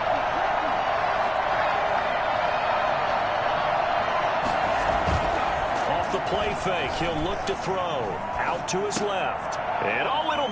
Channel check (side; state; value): both; identical; correlation 1.00